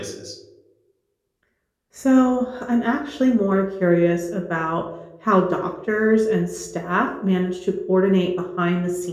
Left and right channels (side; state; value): both; identical; correlation 1.00